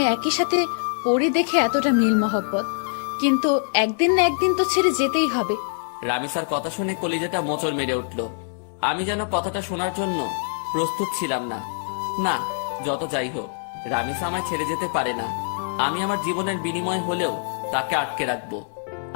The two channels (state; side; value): silent; right; 60 dB below the other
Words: একই সাথে পড়ি দেখে এতটা মিল মহব্বত, কিন্তু একদিন না একদিন তো ছেড়ে যেতেই হবে। রামিসার কথা শুনে কলিজাটা মোচড় মেরে উঠল। আমি যেন কথাটা শোনার জন্য প্রস্তুত ছিলাম না। না, যত যাই হোক, রামিসা আমায় ছেড়ে যেতে পারে না। আমি আমার জীবনের বিনিময় হলেও তাকে আটকে রাখবো